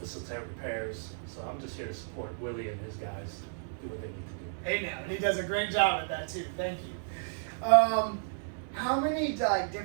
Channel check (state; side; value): silent; left; 56 dB below the other